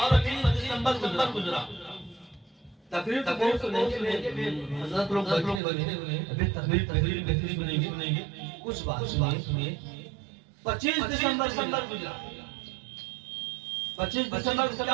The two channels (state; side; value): drops out; left; at 5.6 s